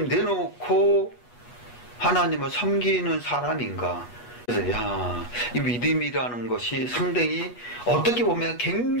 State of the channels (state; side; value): late; right; 8.2 ms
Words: 내놓고 하나님을 섬기는 사람인가? 그래서 이 믿음이라는 것이 상당히 어떻게 보면